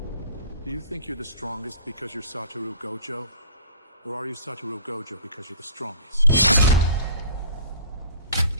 Do you think you're the strongest because you're Satoru Gojo? Or are you Satoru Gojo because you're the strongest?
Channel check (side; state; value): both; inverted; correlation -0.47